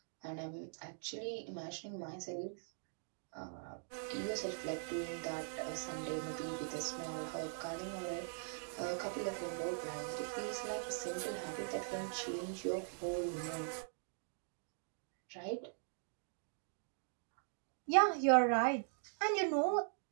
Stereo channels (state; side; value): silent; left; digital silence